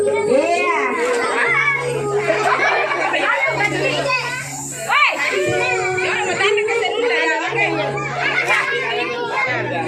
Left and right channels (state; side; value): identical; both; correlation 1.00